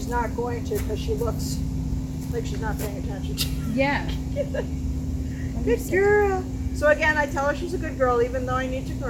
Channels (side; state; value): both; identical; correlation 1.00